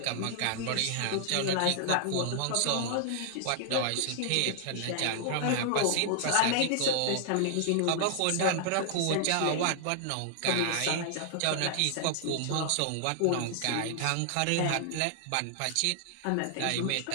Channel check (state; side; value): different; both; correlation -0.01